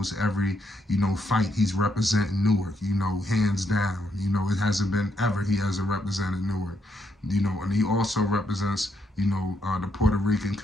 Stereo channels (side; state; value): both; normal; correlation 0.77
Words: every, you know, fight, he's representing Newark, you know, hands down. You know, it hasn't been ever he hasn't represented Newark. You know, and he also represents, you know, the Puerto Rican